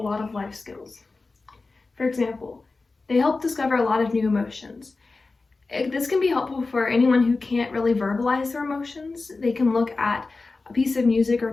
of life skills. For example, they help discover a lot of new emotions. This can be helpful for anyone who can't really verbalize their emotions. They can look at a piece of music or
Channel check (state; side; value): quieter; right; 3.7 dB